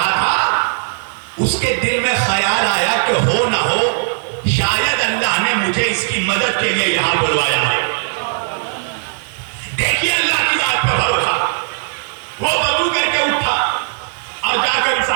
تھا, اس کے دل میں خیال آیا کہ ہو نہ ہو شاید اللہ نے مجھے اس کی مدد کے لیے یہاں بلوایا ہے. دیکھیے اللہ کی ذات پر بھروسہ. وہ وضو کر کے اٹھا اور جا کر اس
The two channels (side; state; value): left; silent; digital silence